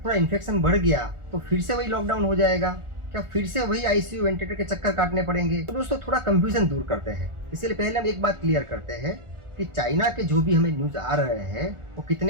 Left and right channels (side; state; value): left; late; 1.4 ms